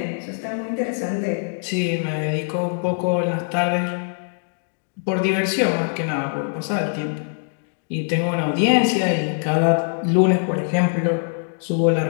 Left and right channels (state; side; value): silent; right; 62 dB below the other